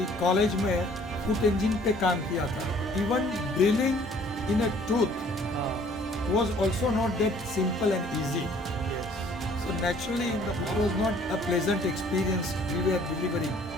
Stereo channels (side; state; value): both; normal; correlation 0.57